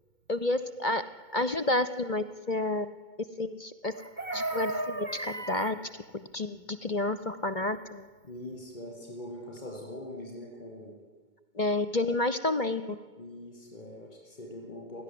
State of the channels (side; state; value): right; late; 2.2 ms